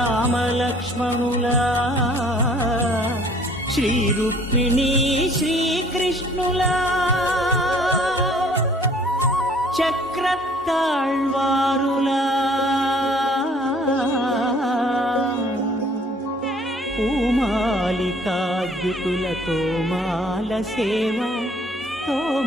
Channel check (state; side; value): normal; both; correlation 0.57